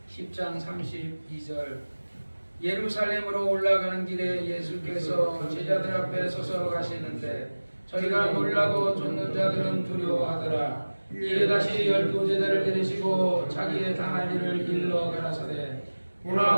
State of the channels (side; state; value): both; inverted; correlation -1.00